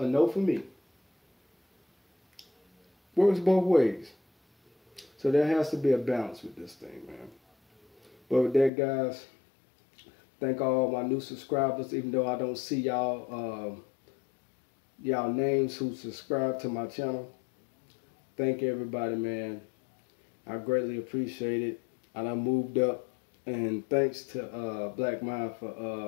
no for me. Works both ways. So there has to be a balance with this thing, man. But with that, guys, thank all my new subscribers, even though I don't see y'all y'all names who subscribe to my channel. Thank everybody, man. I greatly appreciate it. And I moved up. And thanks to Black Mind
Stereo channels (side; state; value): right; drops out; at 8.7 s